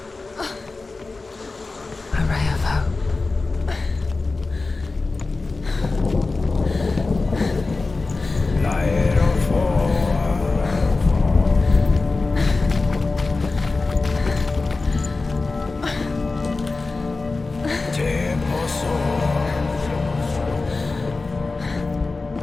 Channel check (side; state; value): right; quieter; 3.7 dB